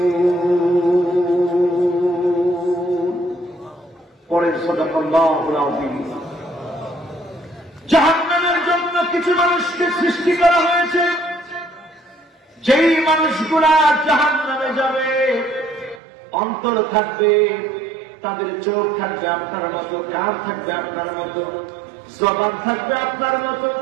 পরের সাদাকাল্লাহুল আযীম। জাহান্নামের জন্য কিছু মানুষকে সৃষ্টি করা হয়েছে, যেই মানুষগুলা জাহান্নামে যাবে অন্তর থাকবে, তাদের চোখ থাকবে আপনার মতো, কান থাকবে আপনার মতো, জবান থাকবে আপনার মতো,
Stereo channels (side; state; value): left; drops out; at 16.0 s